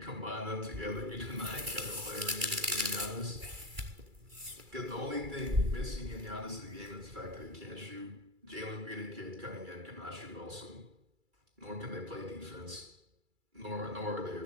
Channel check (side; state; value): left; late; 2.3 ms